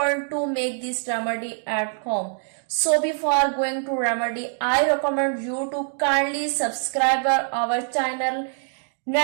to make this remedy at home. So before going to remedy, I recommend you to kindly subscribe our channel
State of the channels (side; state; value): left; silent; digital silence